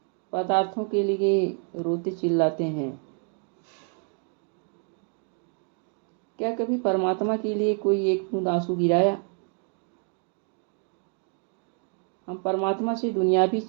पदार्थों के लिए रोते चिल्लाते हैं। क्या कभी परमात्मा के लिए कोई एक बूंद आंसू गिराया? हम परमात्मा से दुनियावी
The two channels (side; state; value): left; quieter; 38.9 dB